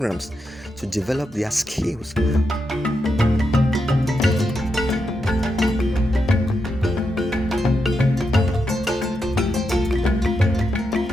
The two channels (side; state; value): both; normal; correlation 0.85